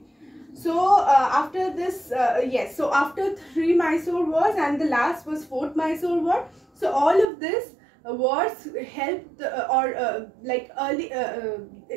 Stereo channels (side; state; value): left; drops out; at 7.2 s